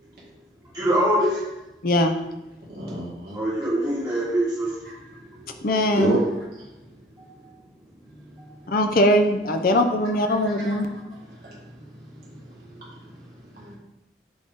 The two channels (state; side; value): normal; both; correlation 0.43